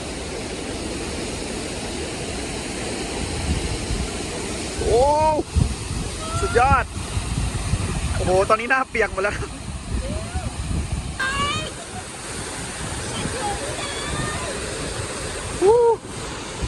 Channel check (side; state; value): both; identical; correlation 1.00